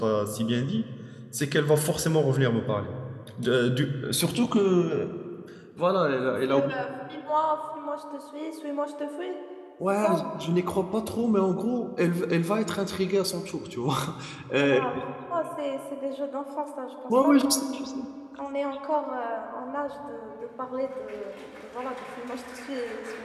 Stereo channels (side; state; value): both; identical; correlation 1.00